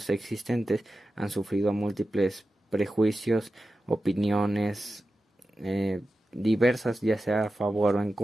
existentes han sufrido múltiples prejuicios, opiniones diversas, ya sea a favor o en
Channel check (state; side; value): normal; both; correlation 0.93